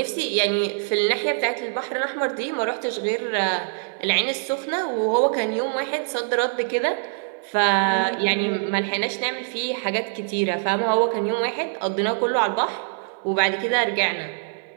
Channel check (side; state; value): left; silent; 57 dB below the other